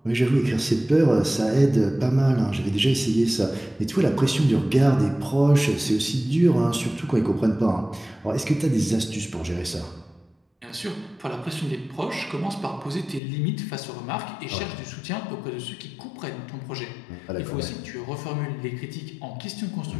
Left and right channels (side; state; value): right; drops out; at 13.2 s